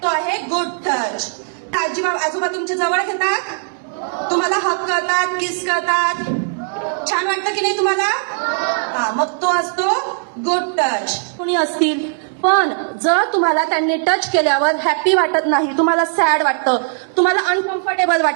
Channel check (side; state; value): left; silent; 67 dB below the other